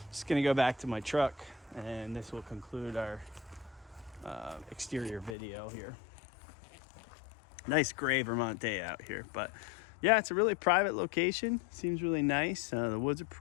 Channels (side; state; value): right; drops out; at 5.4 s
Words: just gonna go back to my truck, and this will conclude our exterior video here. Nice gray Vermont day out here, but yeah, it's a really private location. Seems really nice. The woods are